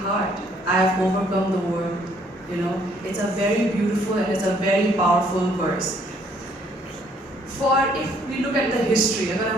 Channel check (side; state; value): both; normal; correlation 0.64